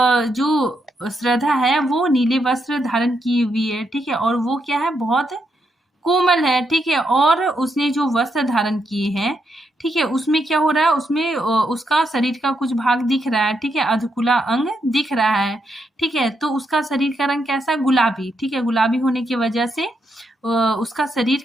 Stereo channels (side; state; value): both; normal; correlation 0.81